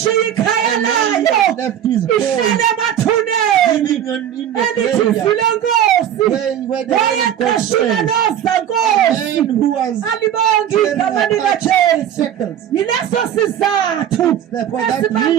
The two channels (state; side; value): quieter; left; 10.1 dB